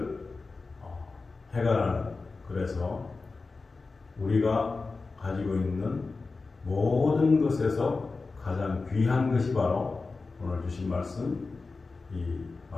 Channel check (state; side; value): quieter; right; 3.9 dB